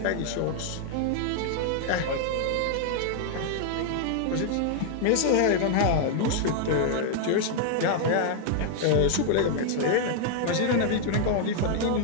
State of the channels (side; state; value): both; different; correlation -0.01